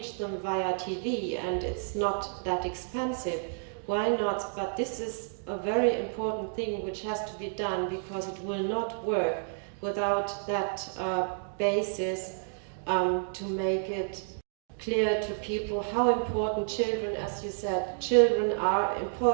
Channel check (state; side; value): silent; left; digital silence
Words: them via TV and it's not that expensive, why not? But this is a very important thing which has to be done, because it will not work without that basis to make it clear to people how important children, as you said, children are